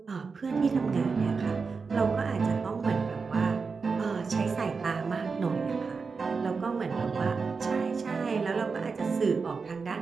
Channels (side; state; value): left; quieter; 4.9 dB